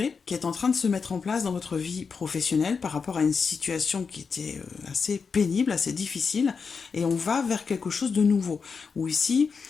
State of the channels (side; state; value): right; quieter; 5.4 dB